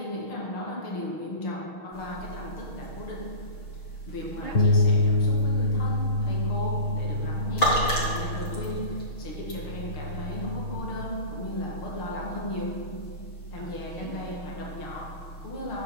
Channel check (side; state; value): right; late; 6.3 ms